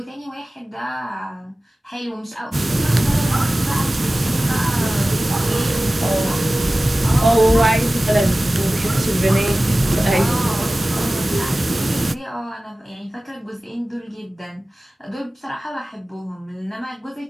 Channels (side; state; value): both; normal; correlation 0.97